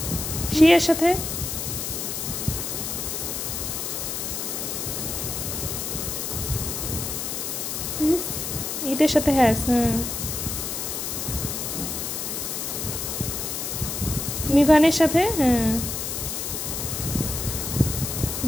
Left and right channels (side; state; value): left; noise; hiss, 3 dB below the sound